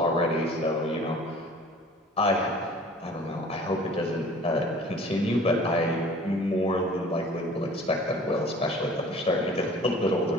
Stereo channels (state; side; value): normal; both; correlation 0.48